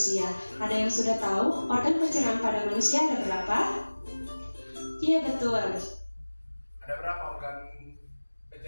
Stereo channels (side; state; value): both; inverted; correlation -1.00